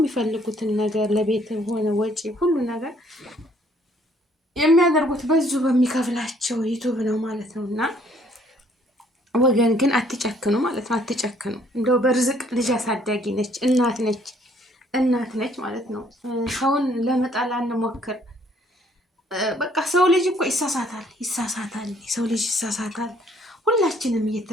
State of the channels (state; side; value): normal; both; correlation 0.63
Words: ነገር ለቤት ሆነ ወጪ ሁሉ ነገር የሚያደርጉት በዙ በሚከፍላቸው ዩቱብ ነው ማለት ነው። እና ወገን ግን አትጨክኑ ማለት ነው። አትጨክኑ። እንደው በርዝቅ ልጅ አሳዳጊ ነች፣ እናት ነች ማለት ነው። ሰውን ለመጣል አንሞክር። በቃ ሰው ልጅ እኮ ይሳሳታል። ሰው ልጅ ይሳሳታል። ሁላችንም